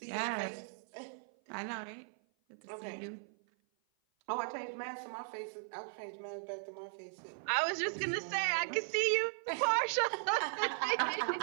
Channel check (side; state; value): left; silent; 53 dB below the other